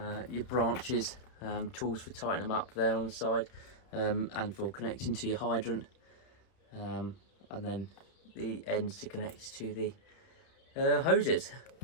branches, tools for tightening them up there on the side, and for connecting to your hydrant, and then the ends to connect to the hoses.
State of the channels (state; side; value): late; right; 31 ms